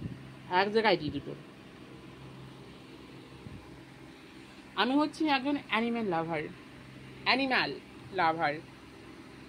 এক জায়গায় দিয়ে দুটো। আমি হচ্ছি একজন অ্যানিম্যাল লাভার।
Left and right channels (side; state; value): both; identical; correlation 1.00